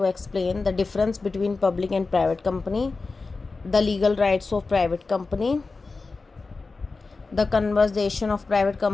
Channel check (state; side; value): quieter; right; 3.9 dB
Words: explain the difference between public and private company, the legal rights of private company, the conversion of private